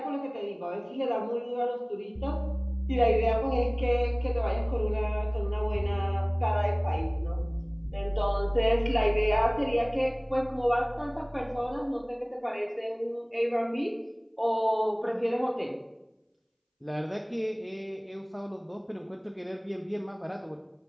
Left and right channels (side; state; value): both; identical; correlation 1.00